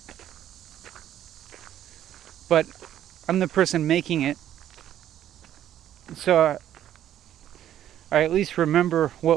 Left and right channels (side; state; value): left; quieter; 11.4 dB